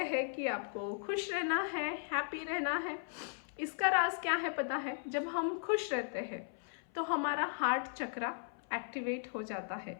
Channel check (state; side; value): silent; right; 53 dB below the other